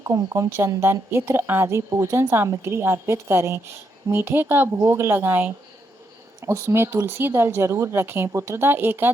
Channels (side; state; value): both; normal; correlation 0.79